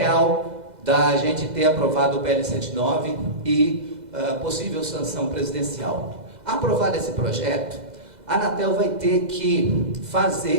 da gente ter aprovado o PL 79 e possível sanção presidencial. Aprovado esse projeto, a Anatel vai ter que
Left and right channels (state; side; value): late; left; 2.0 ms